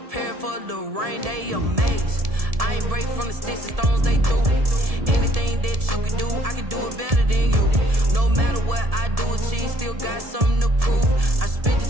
for the rain, they amazed. I ain't break from the sticks and stones they threw. Anything that you can do, I can do it better than you. No matter what I do, achieve, still got something to prove. I spent the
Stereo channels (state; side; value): late; left; 1.7 ms